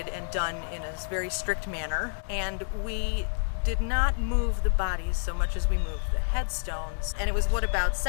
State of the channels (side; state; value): right; silent; digital silence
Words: and done in a very strict manner. And we did not move the bodies so much as we moved the headstones. And it was about